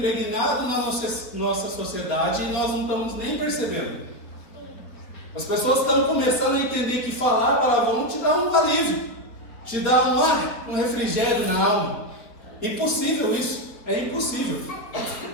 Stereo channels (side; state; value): right; late; 4.0 ms